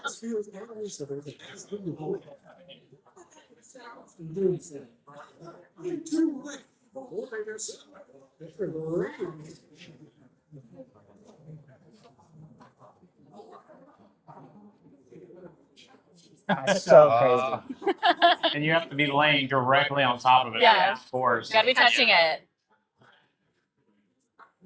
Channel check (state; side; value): identical; both; correlation 1.00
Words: That's so crazy. And you have to be laying directly on top of it. Yeah. Of course. You gotta be touching it.